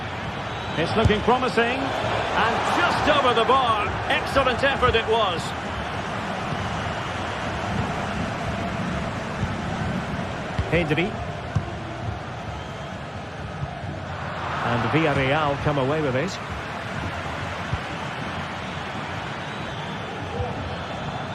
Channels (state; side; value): identical; both; correlation 1.00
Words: It's looking promising, and just over the bar. Excellent effort it was. Pedri. And Villarreal come away with it.